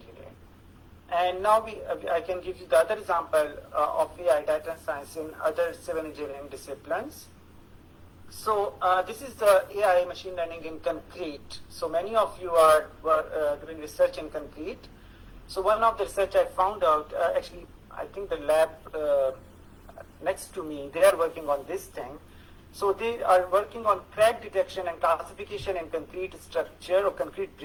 And now I can give you the other example of AI data science in other civil engineering disciplines. So this is the AI machine learning in concrete. So many of you were doing research in concrete. So one of the research I found out, actually I think the lab next to me, they are working on this thing. So they are working on crack detection and classification in concrete structure or concrete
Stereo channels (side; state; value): both; identical; correlation 1.00